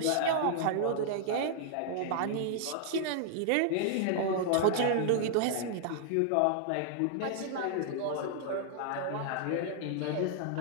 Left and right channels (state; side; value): different; both; correlation -0.01